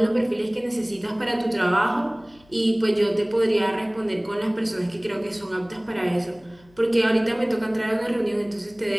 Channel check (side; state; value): left; noise; hum, 29 dB below the sound